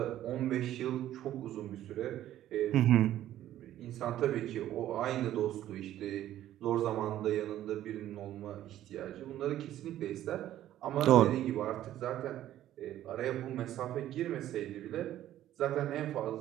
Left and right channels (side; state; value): left; quieter; 12.7 dB